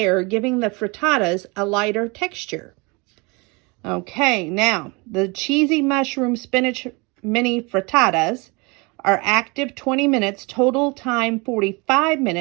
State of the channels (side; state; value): left; quieter; 28.0 dB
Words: giving the frittatas a lighter texture. Okay, now, the cheesy mushroom spinach mini frittatas are active 20 minutes, total time 45